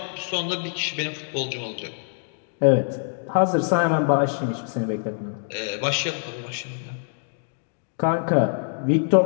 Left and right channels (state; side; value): silent; right; digital silence